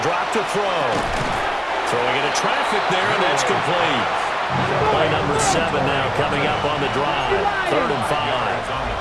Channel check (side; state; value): both; identical; correlation 1.00